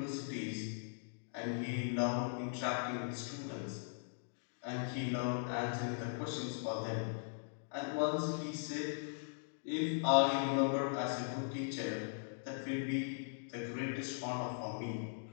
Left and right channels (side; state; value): right; silent; digital silence